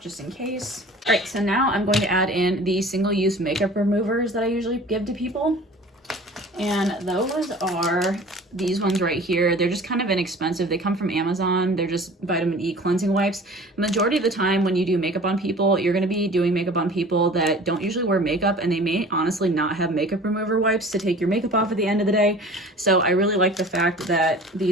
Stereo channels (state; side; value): normal; both; correlation 0.44